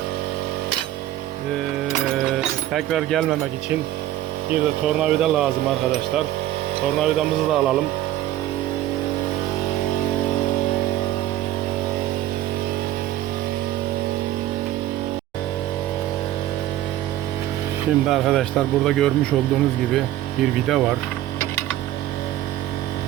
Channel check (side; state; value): left; quieter; 13.6 dB